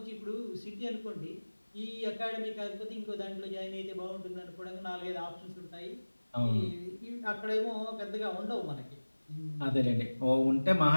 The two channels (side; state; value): both; inverted; correlation -1.00